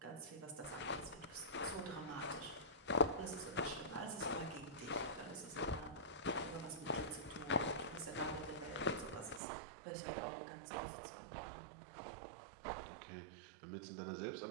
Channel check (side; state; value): left; drops out; at 9.4 s